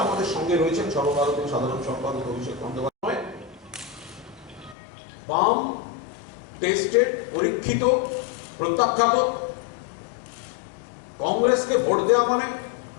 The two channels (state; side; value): drops out; right; at 4.8 s